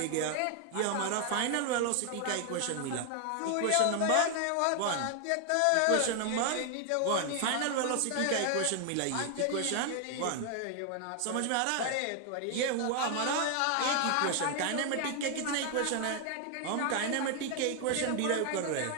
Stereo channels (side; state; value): both; different; correlation 0.00